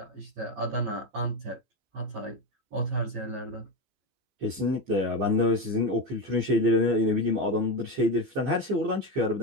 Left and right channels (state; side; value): late; left; 15 ms